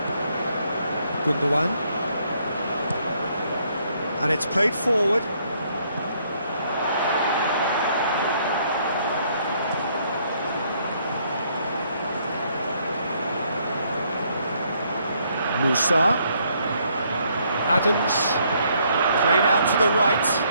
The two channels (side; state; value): both; inverted; correlation -0.69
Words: Gundogan. And it's played forward. Musa. Adams. Played out to the right.